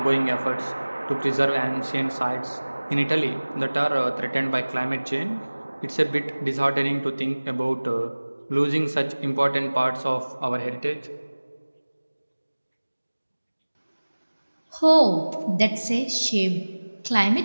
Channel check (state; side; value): inverted; both; correlation -1.00